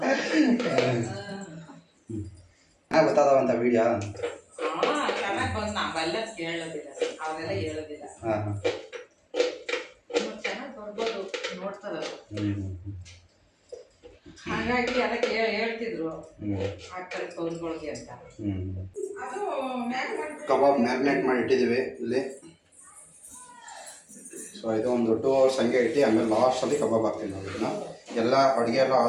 ಚೆನ್ನಾಗಿ ಗೊತ್ತಾದವಂತ ವಿಡಿಯೋ ಚೆನ್ನಾಗಿ ಬಂದು ನಾವೆಲ್ಲ ಕೇಳೋದಿಲ್ಲ ಅವರೆಲ್ಲ ಹೇಳೋದಿಲ್ಲ. ಹಾಂ ಹಾಂ ಚೆನ್ನಾಗಿ ಬರ್ಬೋದು ನೋಡ್ತಾರ ಹ್ಞೂ ಹಾಗಾಗಿ ಎಲ್ಲ ಹೇಳ್ತಿದ್ರು ಹ್ಞೂ ಹಾಕ್ತಾರೆ ಫೋನ್ಗಳಿಗೆ ಅಂತ. ಹ್ಞೂ ಅದು ಕಬಾಬ್ ಮ್ಯಾರಿನೇಟ್ ಮಾಡಿ ಇಟ್ಟಿದ್ದೀವಿ ಇಲ್ಲಿ. ಸೊ ಇದು ಒಂದು 2 hours ಹಂಗೆ ಇಟ್ಟು ಆಮೇಲೆ ಲಾಸ್ಟಲ್ಲಿ ಕಬಾಬ್ ಹಾಕ್ತೀವಿ ನಾವು ಇದನ್ನು ಎಲ್ಲ ಅಡುಗೆ ಎಲ್ಲ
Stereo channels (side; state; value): both; identical; correlation 1.00